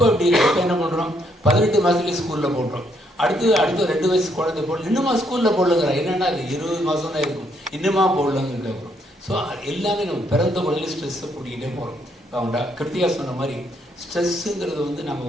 அப்படி இப்போ என்ன பண்ணுறோம், 18 மாதத்துலேயே ஸ்கூலில் போடுறோம். அடுத்து 2 வயசு குழந்தை போடல, இன்னுமா ஸ்கூலில் போடலங்கிறா. என்னென்னா அது 20 மாதம் தான் இருக்கும், இன்னுமா போடலங்க கேட்குறோம். ஸோ எல்லாமே நம்ம பிறந்த குழந்தையில ஸ்ட்ரெஸ்ஸை கூட்டிகிட்டே போகிறோம். அவங்க கிருத்தியா சொன்ன மாதிரி ஸ்ட்ரெஸ்ஸுங்கிறது வந்து நம்ம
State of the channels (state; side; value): normal; both; correlation 0.72